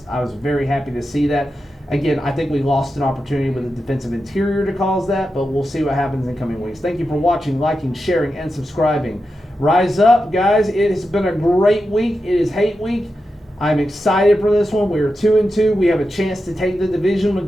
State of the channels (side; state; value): both; normal; correlation 0.89